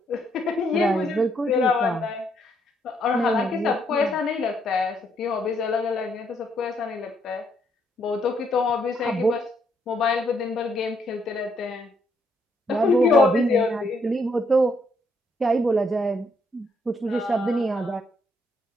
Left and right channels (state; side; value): normal; both; correlation 0.73